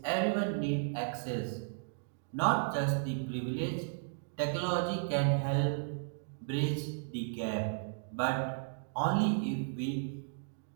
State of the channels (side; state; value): left; silent; digital silence